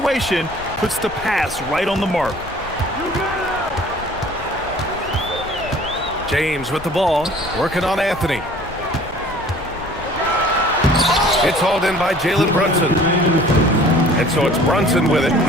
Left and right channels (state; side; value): noise; left; rumble, 17 dB below the sound